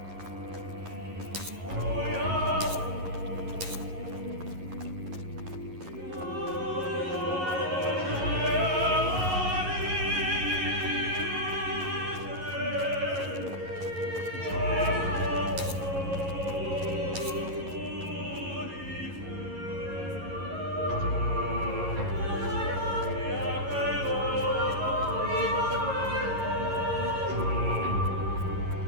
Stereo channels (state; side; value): late; left; 11 ms